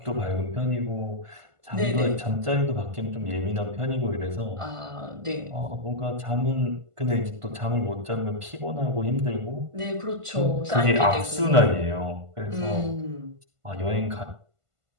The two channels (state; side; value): late; left; 1.5 ms